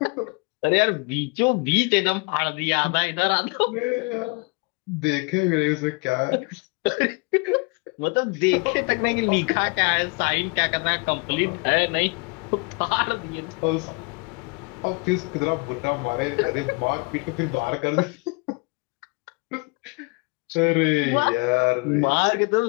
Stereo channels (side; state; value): right; quieter; 30.7 dB